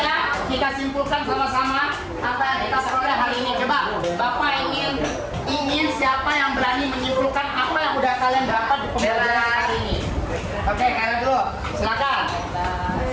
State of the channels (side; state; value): both; identical; correlation 1.00